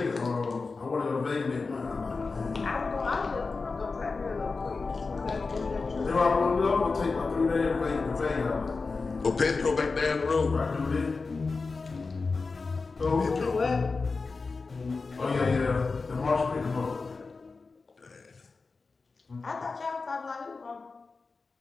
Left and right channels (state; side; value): quieter; right; 4.2 dB